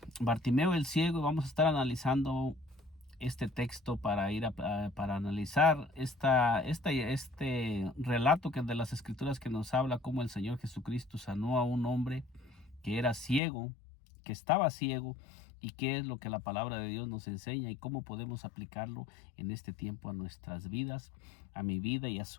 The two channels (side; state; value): right; drops out; at 13.4 s